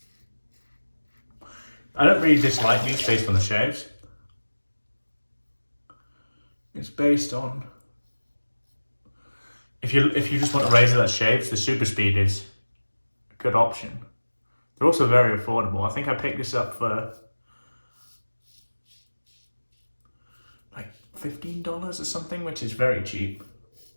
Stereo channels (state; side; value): inverted; both; correlation -1.00